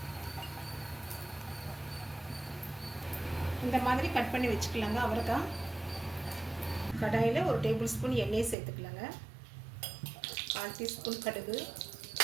இந்த மாதிரி கட் பண்ணி வச்சுக்கலாங்க. அவரைக்காய் கடாயில் 1 டேபிள் ஸ்பூன் எண்ணெய் சேர்த்துக்கலாங்க. 1/4 டீஸ்பூன்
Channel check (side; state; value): left; drops out; at 8.6 s